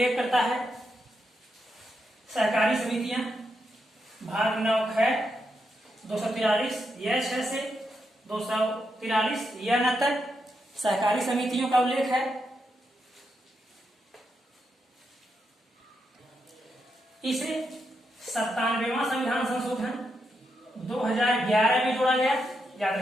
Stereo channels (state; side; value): normal; both; correlation 0.83